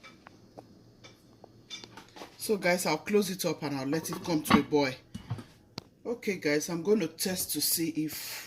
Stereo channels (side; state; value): both; identical; correlation 1.00